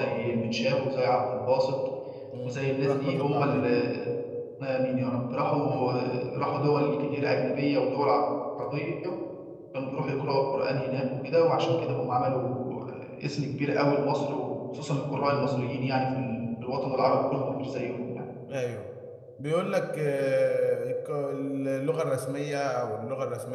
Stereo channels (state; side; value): identical; both; correlation 1.00